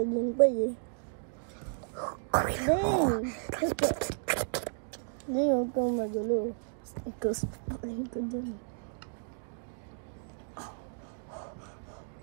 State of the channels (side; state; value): left; silent; digital silence